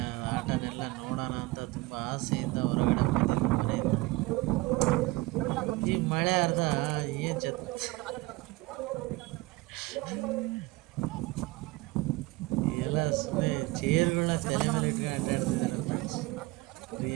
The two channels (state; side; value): quieter; left; 21.0 dB